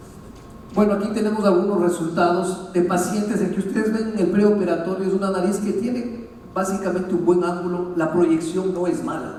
Bueno, aquí tenemos algunos resultados de pacientes en que ustedes ven el preoperatorio. Es una nariz que tiene básicamente un buen ángulo, la proyección no es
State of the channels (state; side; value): identical; both; correlation 1.00